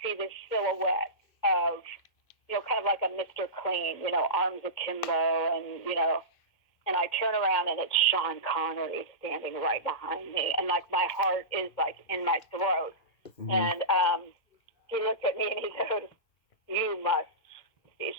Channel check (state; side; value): late; right; 2.1 ms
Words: this silhouette of kind of like a Mr. Clean, arms akimbo, and and I turn around, and it's Sean Connery standing right behind me, and like my heart is like in my throat. Mm-hmm. And he looked at me and he goes, "You must be